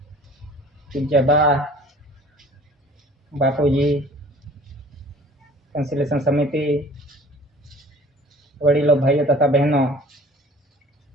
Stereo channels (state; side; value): normal; both; correlation 0.49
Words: Ujaba, Bapuji, conciliation समिति, वडीलों, भाइयों तथा बहनों,